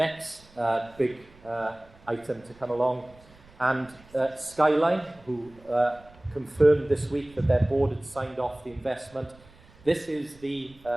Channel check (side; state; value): right; noise; rumble, 26 dB below the sound